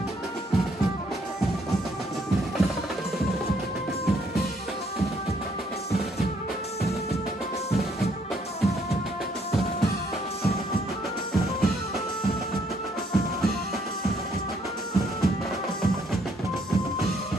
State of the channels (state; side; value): normal; both; correlation 0.68